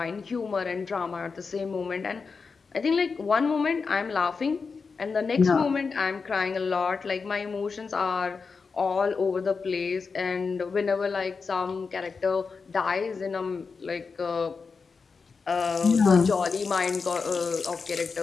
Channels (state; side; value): quieter; right; 4.9 dB